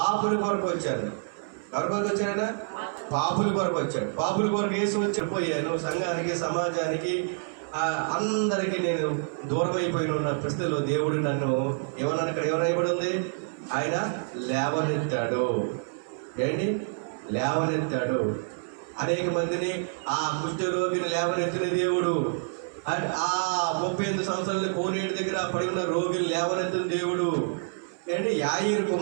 కొరకు వచ్చాను. ఎవరి కొరకు వచ్చాడైనా? పాపుల కొరకు వచ్చాడు. పాపుల కొరకు యేసు వచ్చిపోయాను. సంఘానికి, సమాజానికి, అందరికీ నేను దూరం అయిపోయిన ఉన్న పరిస్థితిలో దేవుడు నన్ను ఏమన్నా ఇక్కడ ఎవరైబడి ఉంది? ఆయన లేవనెత్తాడు. ఏంటి? లేవనెత్తాడు. అనేక మందిని, ఆ కుష్ఠరోగిని లేవనెత్తిన దేవుడు, ఆ 38 సంవత్సరాల కోనేటి దగ్గర పడి ఉన్న రోగిని లేవనెత్తిన దేవుడు. ఏంటి? యాయిరు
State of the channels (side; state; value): left; silent; 60 dB below the other